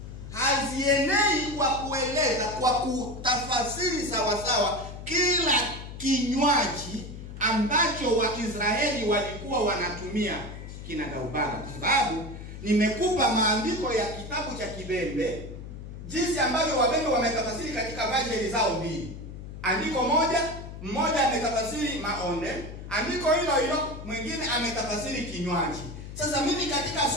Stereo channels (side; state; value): left; noise; hum, 11 dB below the sound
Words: hazienei kwa kueleza, kwa kutafasiri sawasawa kila kinywaji ambacho Waisraeli walikuwa wanatumia kinagaubaga. Kwa sababu nimekupa maandiko ya kitabu cha Kibembe, jinsi ambavyo Wabembe wametafasiri katika version zao mbili. Andiko mmoja ametafasiri maonde, andiko hilo hilo mwingine ametafasiri kinywaji. Sasa mimi katika